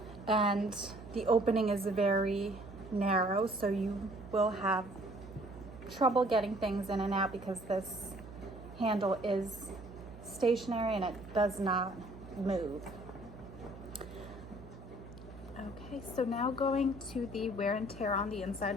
and the opening is very narrow, so you will have trouble getting things in and out because this handle is stationary and it does not move. Okay, so now going to the wear and tear on the inside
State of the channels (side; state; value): right; noise; hum, 15 dB below the sound